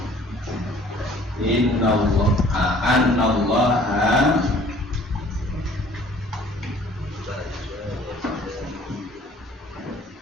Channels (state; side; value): normal; both; correlation 0.53